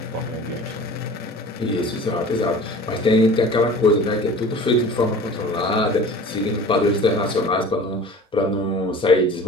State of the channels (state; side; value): normal; both; correlation 0.41